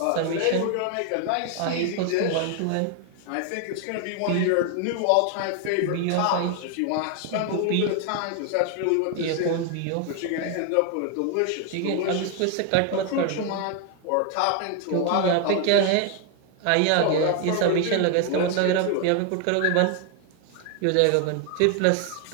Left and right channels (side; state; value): both; different; correlation 0.01